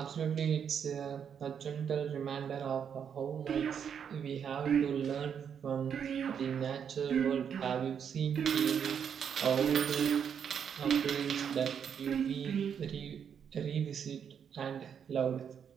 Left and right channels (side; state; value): left; quieter; 7.7 dB